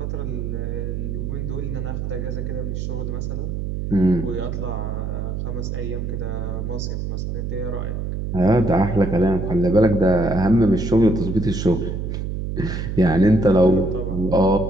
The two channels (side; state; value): right; noise; hum, 3 dB below the sound